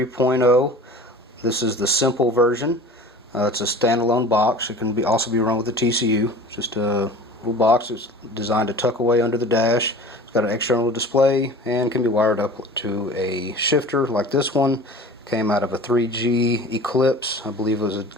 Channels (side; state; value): both; normal; correlation 0.41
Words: This is the simple version. It's a standalone box. It can also be run with a TCU. Just a little box. It's designed to tuck away under the dash. It's got an external display and can be wired up to a shifter like this one. Came out of a 3G Eclipse, I believe it was a